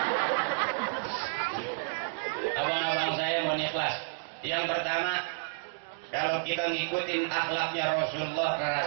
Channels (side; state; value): left; silent; digital silence